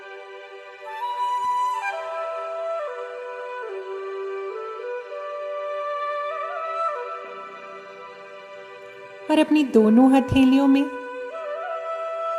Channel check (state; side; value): identical; both; correlation 1.00